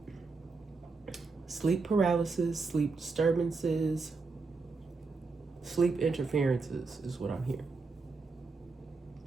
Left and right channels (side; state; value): left; quieter; 4.2 dB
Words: paralysis, sleep disturbances, sleep interferences is what I'm hearing.